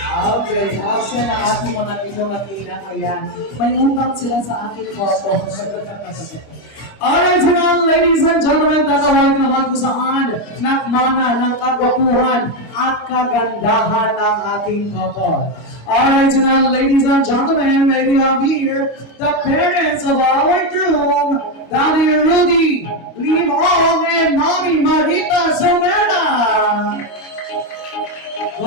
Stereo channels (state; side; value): late; right; 25 ms